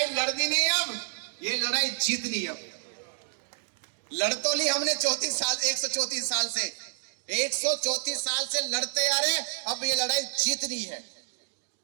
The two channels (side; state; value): left; silent; digital silence